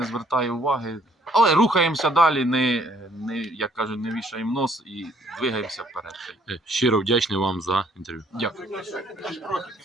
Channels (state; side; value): normal; both; correlation 0.64